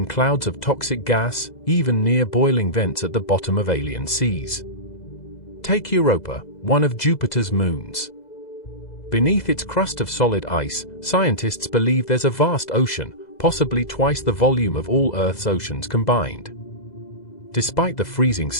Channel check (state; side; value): late; right; 2.0 ms